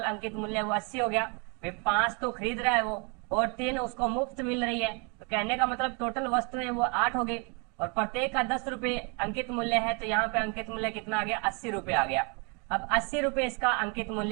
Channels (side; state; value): left; quieter; 33.7 dB